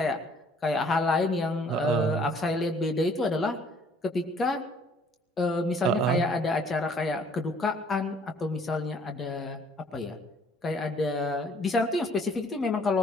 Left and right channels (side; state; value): both; normal; correlation 0.59